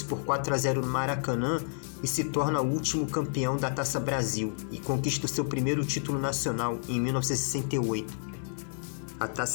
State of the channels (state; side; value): silent; right; 58 dB below the other